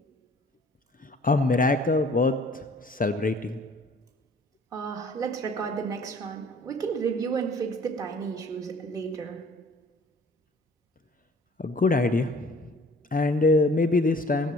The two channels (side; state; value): both; normal; correlation 0.53